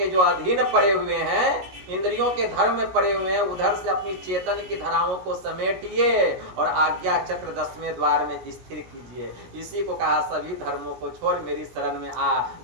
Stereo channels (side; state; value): left; late; 17 ms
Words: जो अधीन पड़े हुए हैं, इंद्रियों के धर्म में पड़े हुए हैं, उधर से अपनी चेतन की धाराओं को समेटिए और आज्ञा चक्र 10वें द्वार में स्थिर कीजिए। इसी को कहा, सभी धर्मों को छोड़ मेरी शरण में आ।